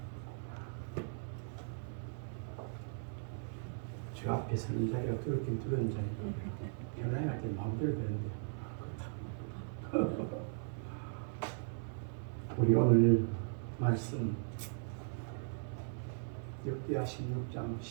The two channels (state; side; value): silent; left; 52 dB below the other